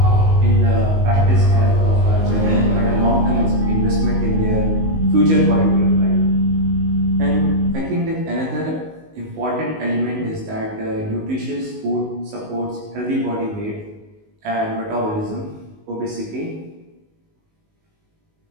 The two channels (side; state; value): left; late; 19 ms